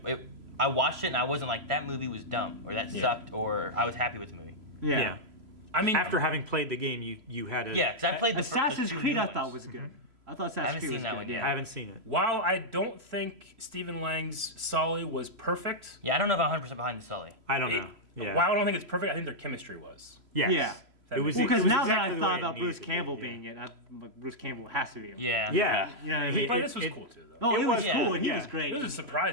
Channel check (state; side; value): late; left; 3.0 ms